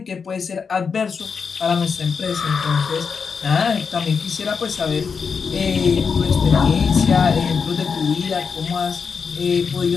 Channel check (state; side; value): quieter; right; 5.8 dB